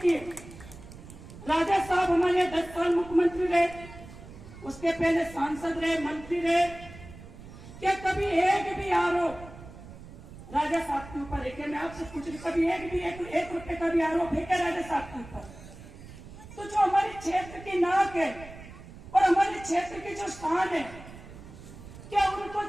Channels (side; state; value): right; noise; rumble, 16 dB below the sound